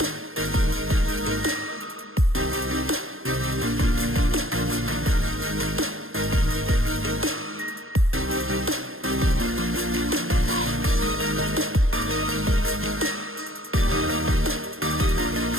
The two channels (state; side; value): late; left; 0.60 ms